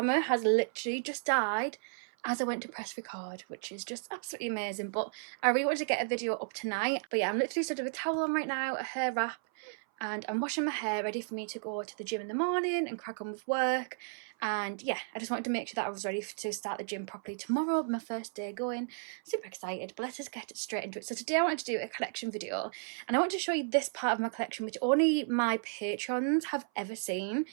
has literally just died as I went to press record, which is just absolutely amazing. But I really wanted to get a video up tonight. But yeah, I'm literally stood with a towel on right now, a hair wrap, and I'm washing my hair ready for me to go to the gym in the morning and crack on with work. And yeah, I just wanted to make sure that I was ready to start the gym properly tomorrow, my first day going. Super excited, but let us get straight into it. So today I wanted to do a collection video, and I want to show you this part of my collection which only my patrons have ever seen.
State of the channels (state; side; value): silent; left; 55 dB below the other